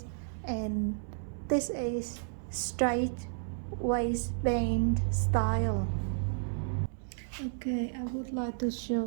and this is straight waistband style. Okay, I would like to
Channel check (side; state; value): left; silent; 56 dB below the other